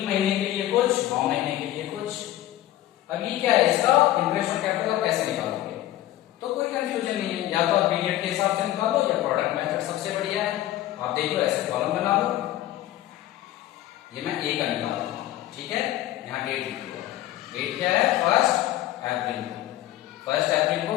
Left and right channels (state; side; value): quieter; right; 14.4 dB